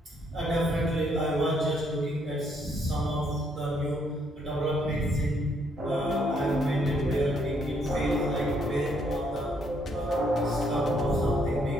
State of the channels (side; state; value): both; normal; correlation 0.71